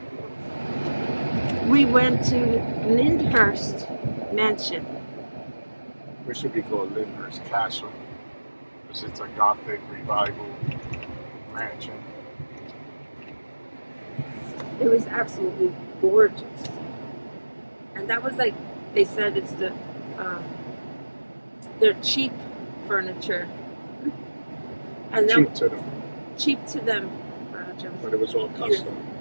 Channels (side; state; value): both; inverted; correlation -1.00